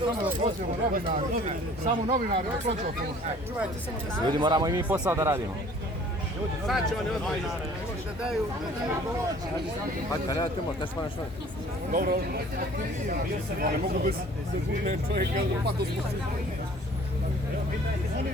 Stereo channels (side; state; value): both; normal; correlation 0.52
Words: Samo novinari, Ljudi, moramo i mi posao da radimo. sad ćemo ne odmah. Hajde, ne dajte možda, kaži pa nešto. Dobro, ne mogu bez sekunde čovjeka, pa to smo